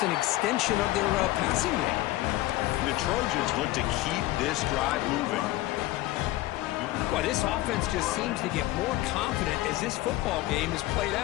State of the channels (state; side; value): quieter; right; 17.3 dB